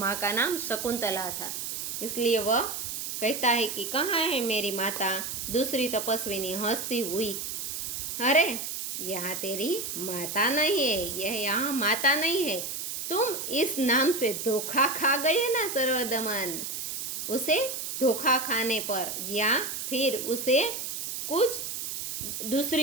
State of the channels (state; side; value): noise; right; hiss, 5 dB below the sound